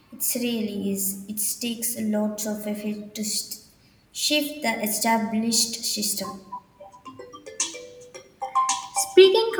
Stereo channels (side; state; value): both; identical; correlation 1.00